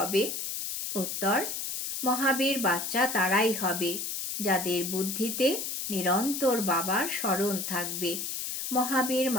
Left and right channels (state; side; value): noise; left; hiss, 4 dB below the sound